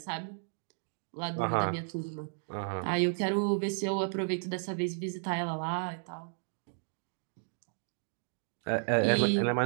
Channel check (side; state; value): left; silent; digital silence